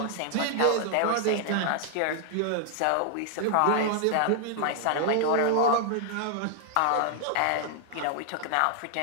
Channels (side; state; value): both; different; correlation 0.00